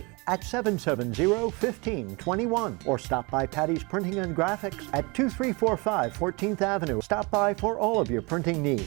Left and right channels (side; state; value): left; quieter; 27.5 dB